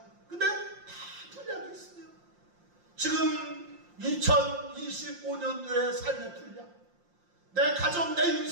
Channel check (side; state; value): left; late; 5.7 ms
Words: 근데 다 분량이 있어요. 지금 2025년도의 삶의 분량, 내 가정, 내